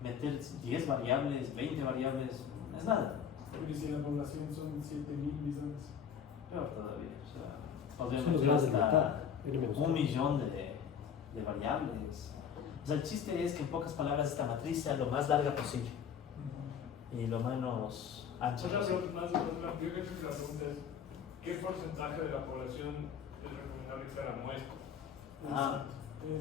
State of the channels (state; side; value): quieter; right; 7.7 dB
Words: meter 10 variables, 20 variables, no es nada. Porque si la población son 7.000 millones. Peor todavía, o sea, Son podríamos los meter grados de hasta libertad. 1 millón de variables. O sea, el chiste es que en pocas palabras esta matriz sea lo más larga posible y lo menos ancha Otra posible. pregunta más, yo creo que la pregunta es, ¿qué porcentaje de la población es recomendable que sea la muestra? Ah,